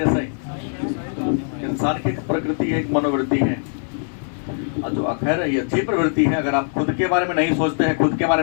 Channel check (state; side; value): silent; right; digital silence